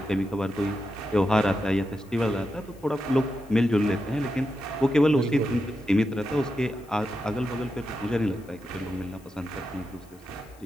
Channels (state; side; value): noise; left; hiss, 28 dB below the sound